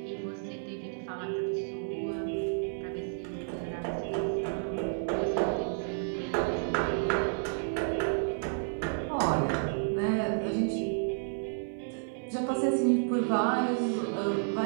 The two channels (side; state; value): left; silent; 57 dB below the other